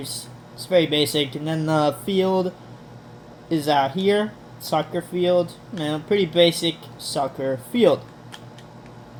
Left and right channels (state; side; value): identical; both; correlation 1.00